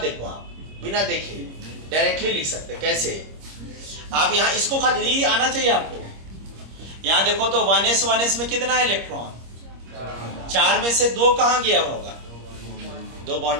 आप बिना देखे डायरेक्टली लिख सकते। कैसे? आप यहाँ इसको खाली आना चाहिए आपको। यहाँ देखो तो 1s में कितना इलेक्ट्रॉन? 4 में से 2 कहाँ गया होगा? 2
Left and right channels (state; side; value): late; left; 26 ms